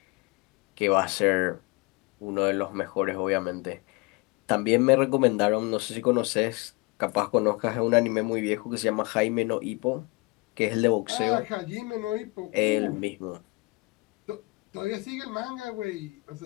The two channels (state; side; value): quieter; right; 26.2 dB